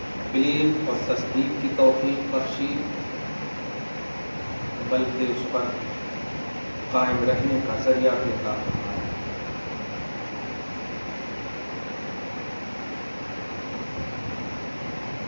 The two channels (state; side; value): inverted; both; correlation -1.00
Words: بلیف اور تصدیق کی توفیق بخشی بلکہ اس پر قائم رہنے کا ذریعہ بھی عطا فرمایا.